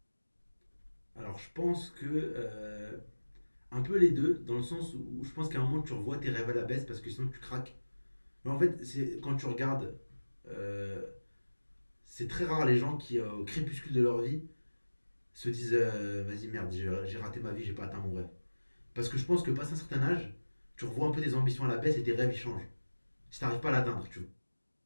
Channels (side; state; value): both; inverted; correlation -1.00